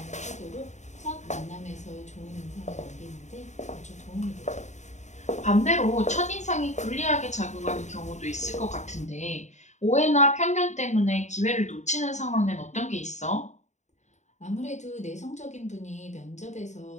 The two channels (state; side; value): late; right; 0.34 ms